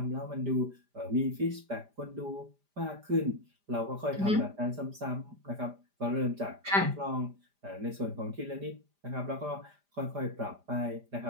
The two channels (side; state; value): left; late; 5.0 ms